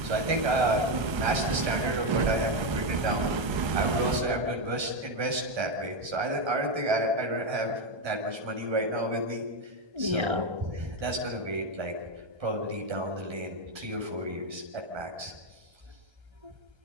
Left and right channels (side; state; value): left; late; 1.3 ms